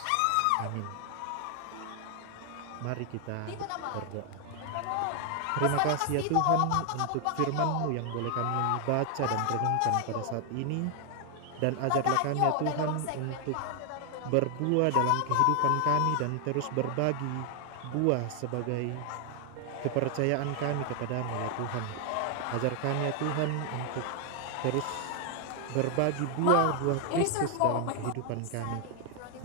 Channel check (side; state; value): both; different; correlation 0.00